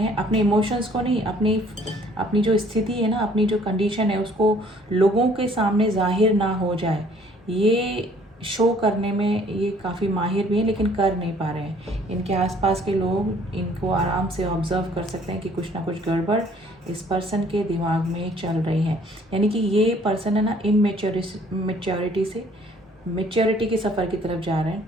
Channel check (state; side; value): normal; both; correlation 0.58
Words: हैं अपने इमोशंस को, नहीं अपनी जो स्थिति है ना, अपनी जो कंडीशन है उसको लोगों के सामने जाहिर ना हो जाए, ये शो करने में ये काफ़ी माहिर भी हैं, लेकिन कर नहीं पा रहे हैं। इनके आसपास के लोग इनको आराम से ऑब्जर्व कर सकते हैं कि कुछ ना कुछ गड़बड़ इस पर्सन के दिमाग में चल रही है। यानी कि ये पर्सन है ना इमेच्योरिटी से मेच्योरिटी के सफ़र की तरफ जा रहे